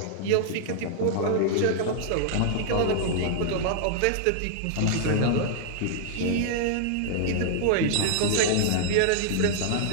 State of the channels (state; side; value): different; both; correlation -0.01